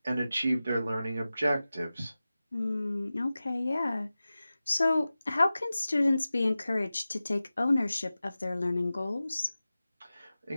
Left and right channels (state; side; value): inverted; both; correlation -0.95